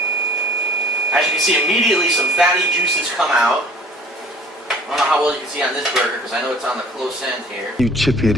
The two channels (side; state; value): both; normal; correlation 0.50